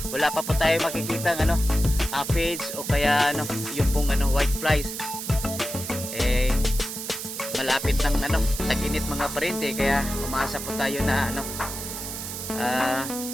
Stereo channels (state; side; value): noise; right; hiss, 7 dB below the sound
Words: Wala pa po tayo makikita ng ano, aphids o kaya ano, yung pong ano, white flies. Malapit ng ano, tag-init mga parente, kaya umasa po tayo na ano,